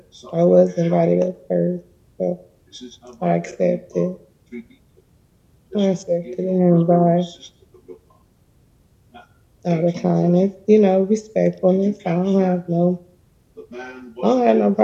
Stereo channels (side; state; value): both; identical; correlation 1.00